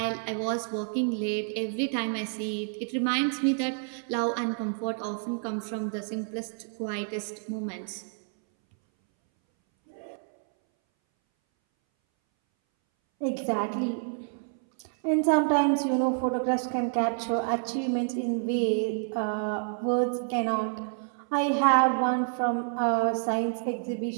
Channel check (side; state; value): left; silent; 59 dB below the other